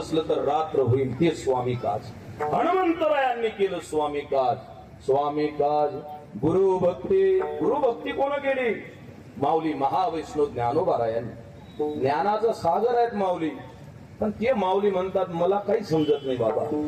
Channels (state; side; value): identical; both; correlation 1.00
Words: तर रात्र होईल, ते स्वामी काज. हनुमंतरायांनी केलं स्वामी काज. स्वामी काज गुरुभक्ती कोण केली? माऊली महावैष्णव ज्ञानोबारायांनी. ज्ञानाचा सागर आहेत माऊली, पण ते माऊली म्हणतात मला काही समजत नाही बाबा,